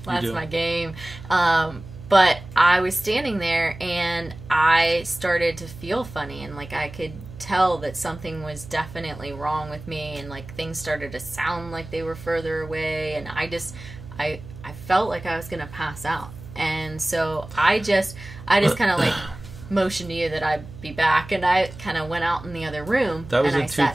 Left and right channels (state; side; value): noise; right; hum, 15 dB below the sound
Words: That's my game. But I was standing there and I started to feel funny, and like I could tell that something was definitely wrong with me, and like things started to sound like they were further away, and I felt like I was gonna pass out. And so I just kind of like motioned to you that I'd be back, and I kind of went out in the other room. That was and in